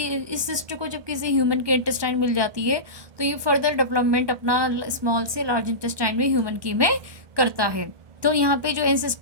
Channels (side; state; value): left; late; 1.2 ms